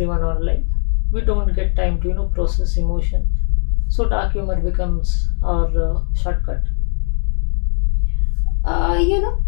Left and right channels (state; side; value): silent; right; 56 dB below the other